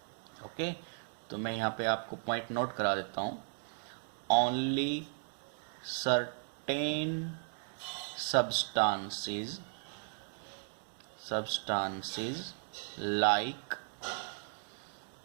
Okay, तो मैं यहाँ पे आपको पॉइंट नोट करा देता हूँ। Only certain substances like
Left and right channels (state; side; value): silent; left; digital silence